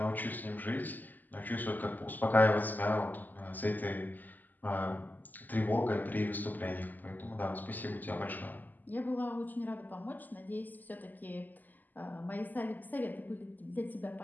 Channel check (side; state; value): right; late; 0.085 ms